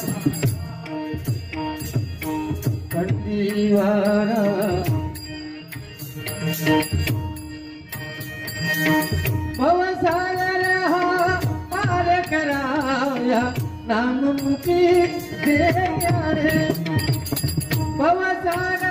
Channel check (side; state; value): both; identical; correlation 1.00